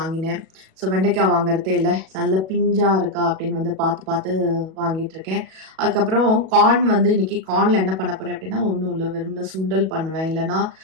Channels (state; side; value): late; left; 37 ms